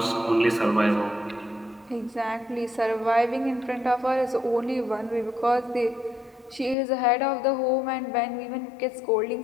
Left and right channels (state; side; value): drops out; right; at 6.8 s